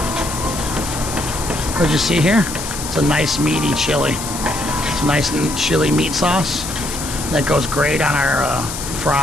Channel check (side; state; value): left; noise; hiss, 7 dB below the sound